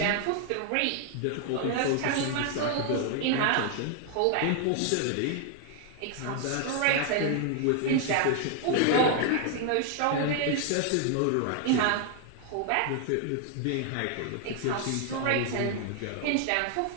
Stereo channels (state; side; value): different; both; correlation 0.00